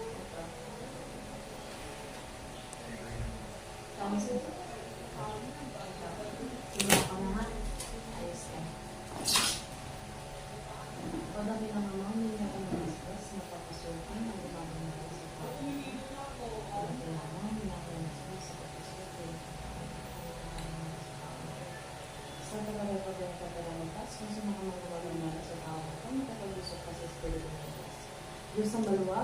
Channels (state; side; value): identical; both; correlation 1.00